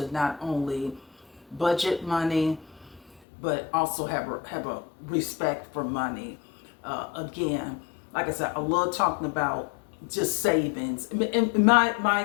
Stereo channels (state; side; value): drops out; right; at 3.2 s